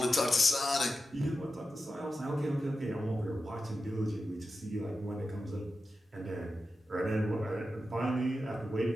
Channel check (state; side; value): normal; both; correlation 0.91